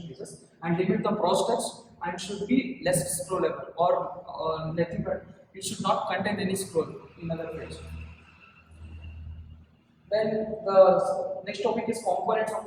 pages, and limit the prospects and should be less scrollable or nothing but it should not contain any scroll in other page. Then the next topic is components of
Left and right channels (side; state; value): both; identical; correlation 1.00